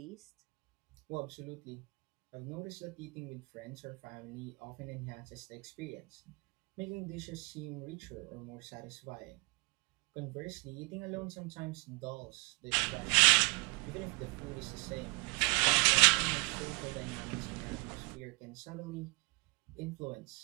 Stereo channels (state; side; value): quieter; left; 29.0 dB